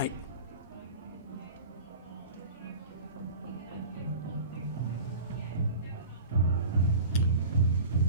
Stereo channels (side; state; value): both; inverted; correlation -0.38